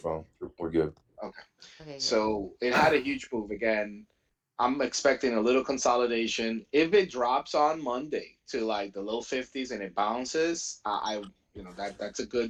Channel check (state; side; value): identical; both; correlation 1.00